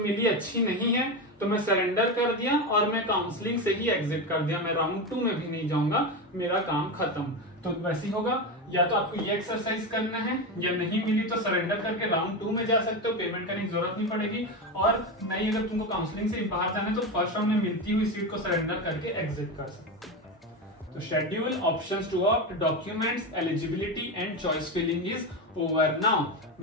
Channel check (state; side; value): normal; both; correlation 0.17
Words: अच्छी नहीं है, तो मैं सरेंडर कर दिया और मैं काउंसलिंग से ही एग्जिट कर दिया, मैं राउंड 2 में भी नहीं जाऊंगा, मेरा काम खत्म। तो वैसे ही होगा, या तो आपको ये एक्सरसाइज करना है, या नहीं मिली तो सरेंडर करके राउंड 2 में जा सकते हो, पेमेंट करने की जरूरत नहीं पड़ेगी। और नहीं, अगर तुमको काउंसलिंग से बाहर जाना है तो फर्स्ट राउंड में मिलती हुई सीट को सरेंडर करके एग्जिट कर सकते हो। तो schedule, options to opt, documents, eligibility and choice filling is over now.